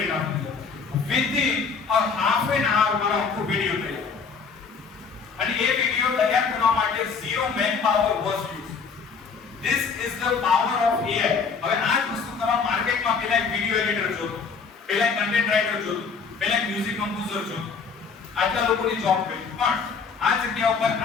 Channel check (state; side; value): quieter; right; 5.4 dB